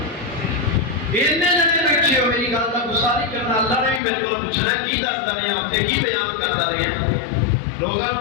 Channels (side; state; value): right; drops out; at 4.0 s